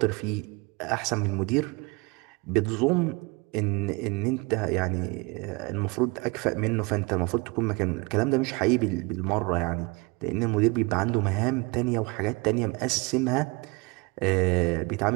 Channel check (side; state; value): left; quieter; 27.4 dB